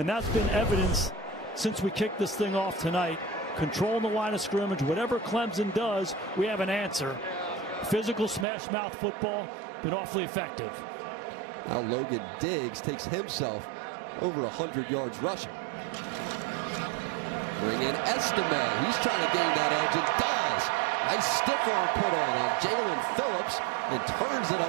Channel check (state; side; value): drops out; left; at 8.5 s